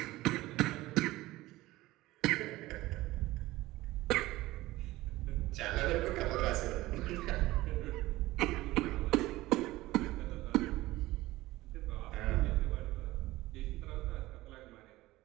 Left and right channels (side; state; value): left; quieter; 17.9 dB